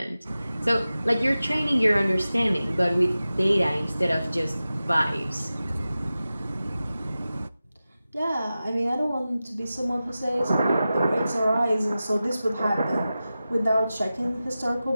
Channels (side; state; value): both; inverted; correlation -0.95